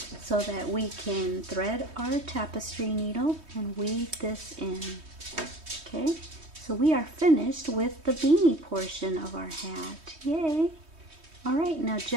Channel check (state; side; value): late; left; 3.2 ms